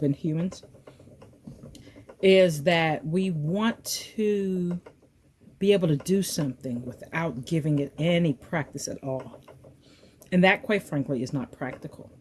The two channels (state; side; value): identical; both; correlation 1.00